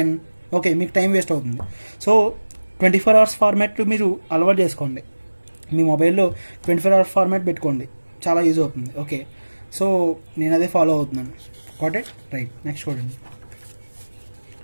ఓకే, మీకు టైం వేస్ట్ అవుతుంది. సో 24 అవర్స్ ఫార్మాట్ మీరు అలవాటు చేసుకోండి. మీ మొబైల్లో 24 అవర్స్ ఫార్మాట్ పెట్టుకోండి, చాలా యూజ్ అవుతుంది. ఓకే, సో నేను అదే ఫాలో అవుతున్నాను. Got it? రైట్. నెక్స్ట్ చూడండి.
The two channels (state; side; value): inverted; both; correlation -1.00